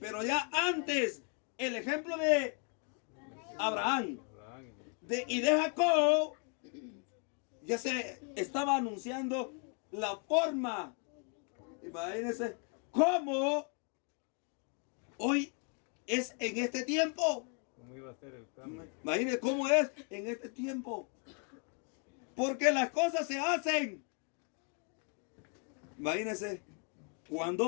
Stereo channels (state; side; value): quieter; right; 38.8 dB